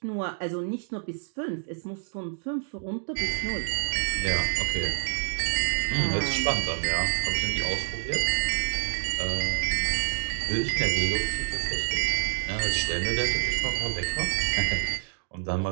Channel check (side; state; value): left; silent; digital silence